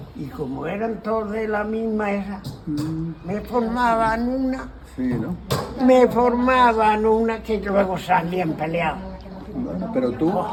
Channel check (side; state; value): both; identical; correlation 1.00